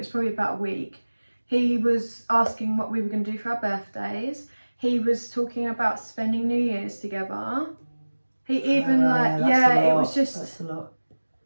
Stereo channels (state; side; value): inverted; both; correlation -1.00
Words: probably about a week. He was asking what we were going to do for our birthdays. He was talking about spending New Year's together. He even it was just. That's a lot.